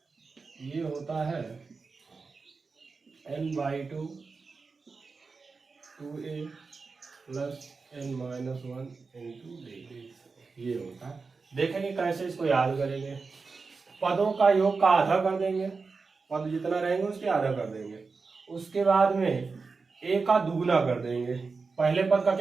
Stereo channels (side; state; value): left; quieter; 4.5 dB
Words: ये होता है n/2 2a plus n-1 into d। ये होता है। देखेंगे कैसे इसको याद करेंगे। पदों का योग का आधा कर देंगे, पद जितना रहेंगे उसके आधा कर देंगे। उसके बाद में a का दुगुना कर देंगे, पहले पद का